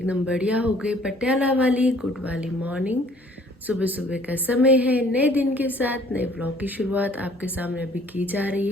बढ़िया हो गए। पटियाला वाली गुड वाली मॉर्निंग, सुबह सुबह का समय है। नए दिन के साथ नए ब्लॉग की शुरुआत आपके सामने अभी की जा रही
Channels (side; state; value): both; normal; correlation 0.57